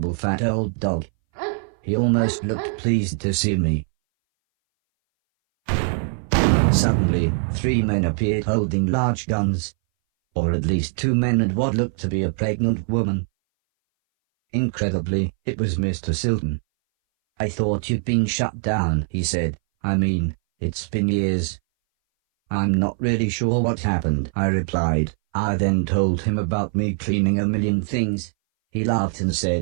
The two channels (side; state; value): left; silent; 61 dB below the other